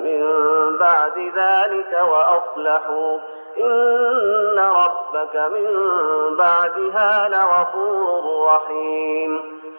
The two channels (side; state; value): both; inverted; correlation -1.00